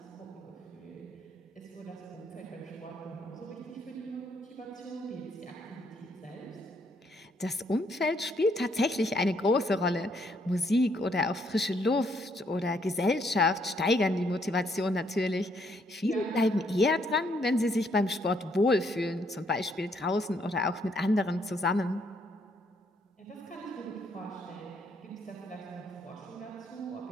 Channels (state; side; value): normal; both; correlation 0.71